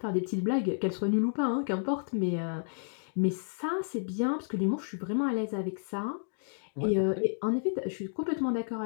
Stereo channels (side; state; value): right; silent; digital silence